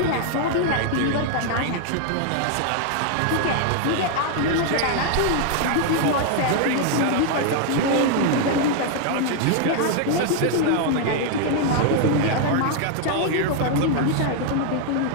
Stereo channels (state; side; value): different; both; correlation 0.00